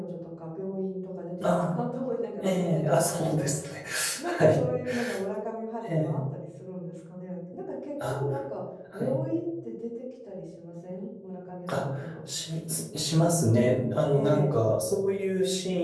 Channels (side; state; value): both; identical; correlation 1.00